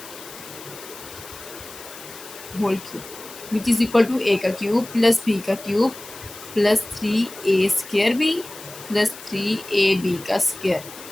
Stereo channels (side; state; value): left; noise; hiss, 15 dB below the sound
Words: which is equal to A का क्यूब प्लस बी का cube plus 3a² B plus 3ab का स्क्वायर।